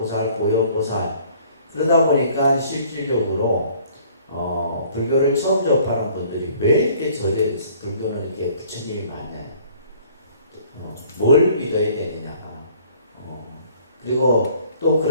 보현보살. 그러다 보니까 실질적으로 불교를 처음 접하는 분들이 왜 이렇게 불교는 이렇게 부처님이 많냐? 뭘 믿어야 되느냐? 그리고 또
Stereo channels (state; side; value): inverted; both; correlation -0.56